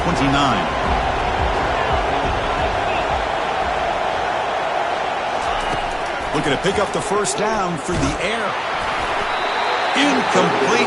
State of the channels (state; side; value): identical; both; correlation 1.00